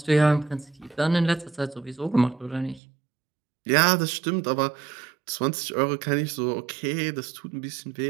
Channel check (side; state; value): left; drops out; at 2.8 s